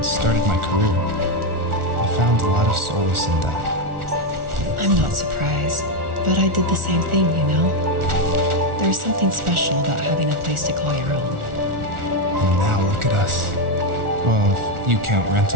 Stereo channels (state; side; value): late; left; 1.4 ms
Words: started my career. I found a lot of solace in that. I'm not surprised, but I did the same thing, you know? There's something special about having a place to call your own. And now look at us. Well, if you count